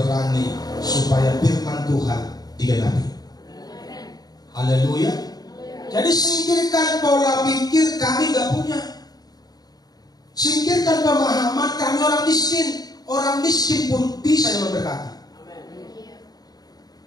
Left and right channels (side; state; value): right; late; 0.19 ms